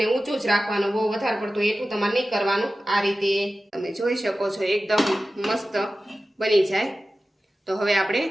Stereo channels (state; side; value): normal; both; correlation 0.95